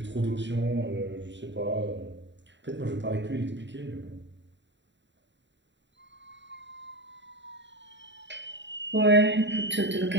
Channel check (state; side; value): late; left; 0.52 ms